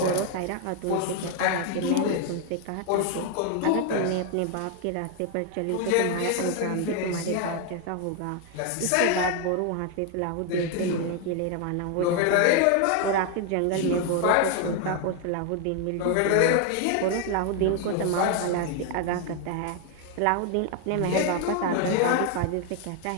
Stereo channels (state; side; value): different; both; correlation 0.01